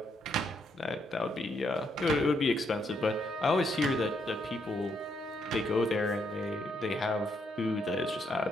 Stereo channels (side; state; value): both; normal; correlation 0.75